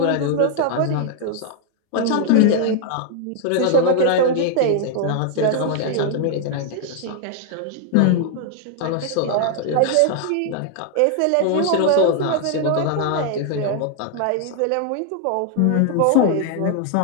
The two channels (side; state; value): both; different; correlation 0.00